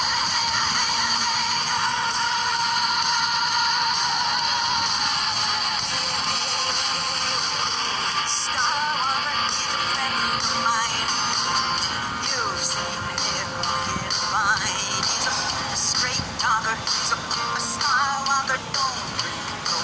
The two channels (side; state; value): both; identical; correlation 1.00